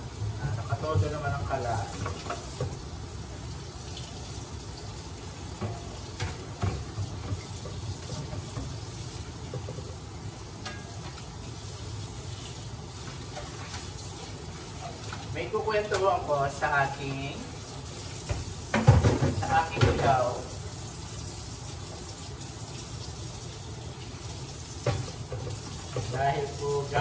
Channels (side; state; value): both; identical; correlation 1.00